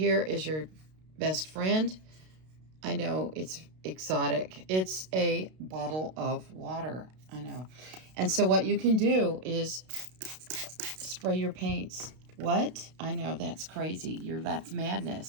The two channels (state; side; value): late; left; 32 ms